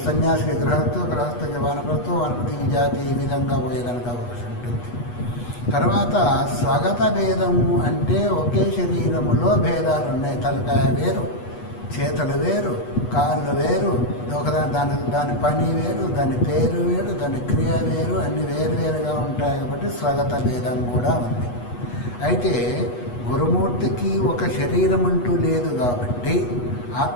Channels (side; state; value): right; late; 8.3 ms